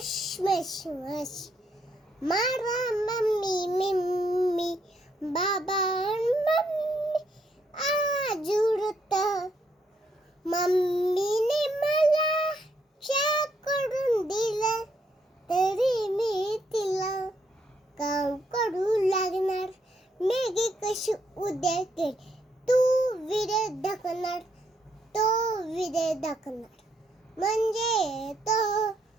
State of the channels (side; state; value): both; normal; correlation 0.74